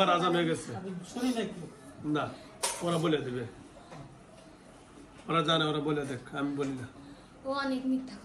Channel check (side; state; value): both; identical; correlation 1.00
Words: আজান হয়ে গেছে। শুনি না একটু। না, ওরা বলে দেবে, ওরা জানে, ওরা বলে দেখ, আমি বলি না। ও অনেক মিথ্যা